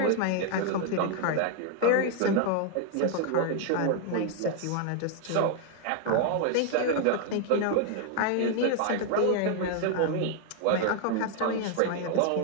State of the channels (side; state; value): both; different; correlation 0.00